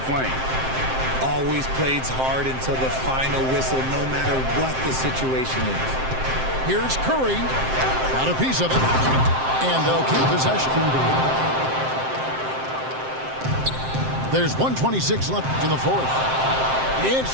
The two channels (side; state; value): left; late; 7.6 ms